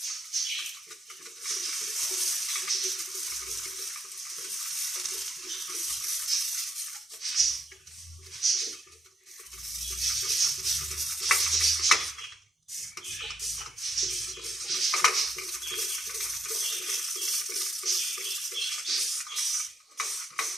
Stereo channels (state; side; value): normal; both; correlation 0.77